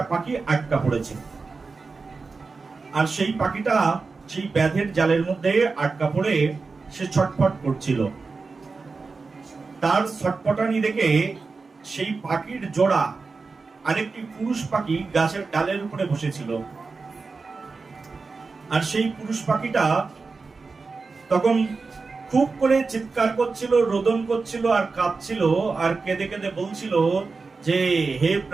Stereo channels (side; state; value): left; quieter; 4.3 dB